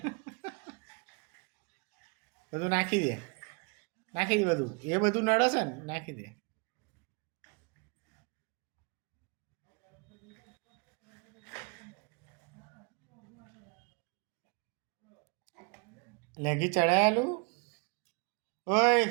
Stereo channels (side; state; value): left; quieter; 31.9 dB